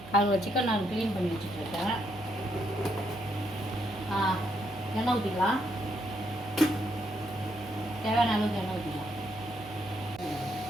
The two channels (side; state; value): right; noise; hum, 16 dB below the sound